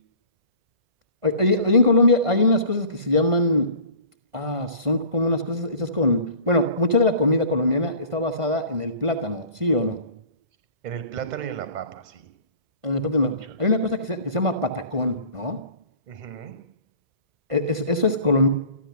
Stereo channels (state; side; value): late; left; 1.5 ms